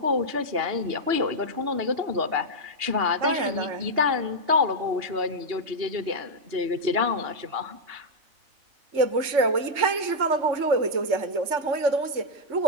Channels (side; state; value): left; late; 3.5 ms